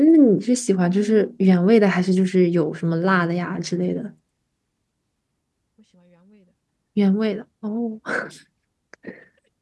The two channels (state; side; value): identical; both; correlation 1.00